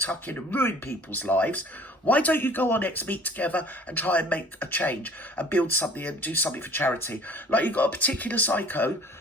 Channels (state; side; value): normal; both; correlation 0.50